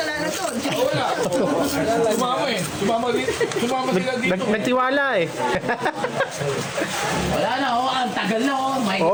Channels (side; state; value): both; identical; correlation 1.00